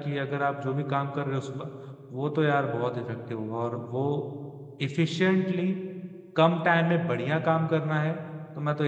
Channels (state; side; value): identical; both; correlation 1.00